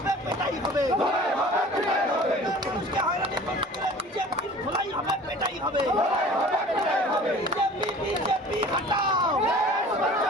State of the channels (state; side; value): normal; both; correlation 0.44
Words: পেটাই হবে মানুষকে হয়রানি করতে গেলে বিজেপির ধোলাই হবে পেটাই হবে বিজেপি বিজেপি হটাও